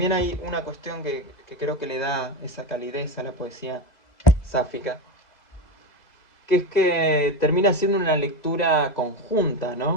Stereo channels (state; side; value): late; right; 2.0 ms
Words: hay una cuestión que creo que le da esa calidez a la poesía sáfica, que es que termina siendo una lectura conjunta,